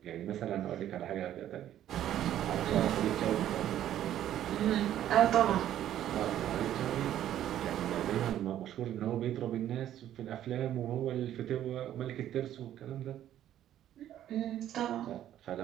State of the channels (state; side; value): quieter; left; 11.7 dB